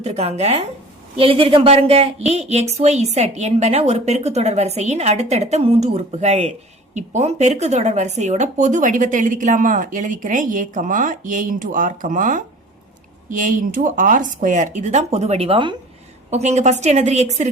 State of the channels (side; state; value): both; normal; correlation 0.44